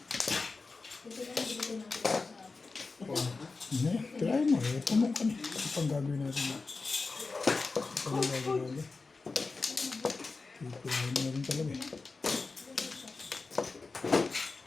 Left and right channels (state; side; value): quieter; right; 4.0 dB